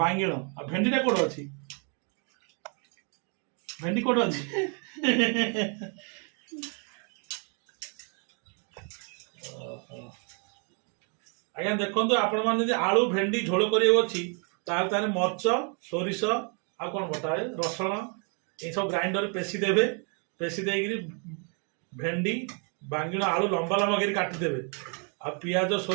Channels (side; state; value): left; quieter; 39.3 dB